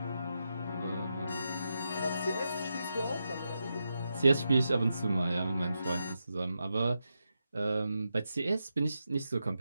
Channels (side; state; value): both; inverted; correlation -0.87